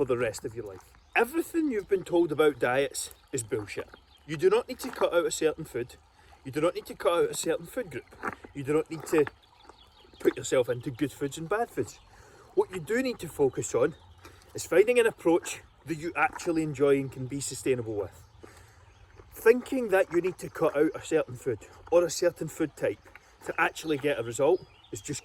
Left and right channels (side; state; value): both; identical; correlation 1.00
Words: the rest of your life. Everything you've been told about diets is bullshit. You do not need to cut out a certain food. You do not need to cut out a certain food group. You do not need to put yourself into good foods and bad foods. What you do need to focus on is finding an approach that you actually enjoy and can be sustainable with. Thinking that you need to cut out a certain food or a certain food type to actually get a result is just